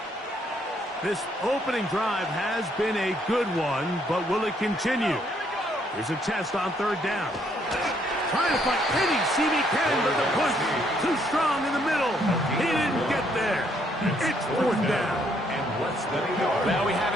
This opening drive has been a good one, but will it continue? Here's a test on third down. Trying to find any seam he can, but the push too strong in the middle. He didn't get there. It's fourth down. Well, we have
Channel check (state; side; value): normal; both; correlation 0.70